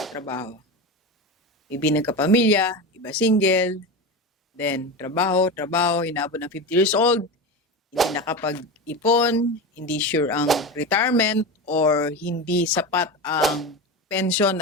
Ibi nagkapamilya, iba single, then trabaho, inabot ng 50 years old, hindi nakapag-ipon, hindi sure ang retirement, or hindi sapat ang pension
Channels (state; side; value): normal; both; correlation 0.22